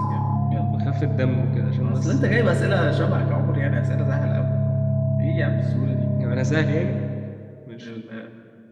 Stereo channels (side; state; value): both; identical; correlation 1.00